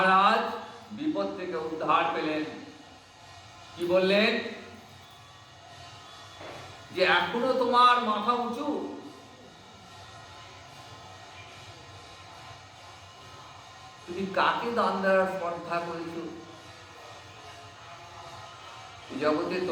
বিপদ থেকে উদ্ধার পেলেন। কি বললেন? যে এখনো তোমার মাথা উঁচু, তুমি কাকে দান দেওয়ার স্পর্ধা করেছো? জগতে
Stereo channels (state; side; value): identical; both; correlation 1.00